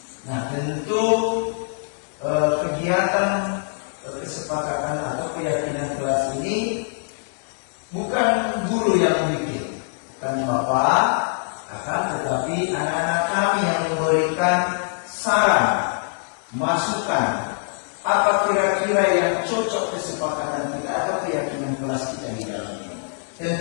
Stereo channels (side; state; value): right; silent; digital silence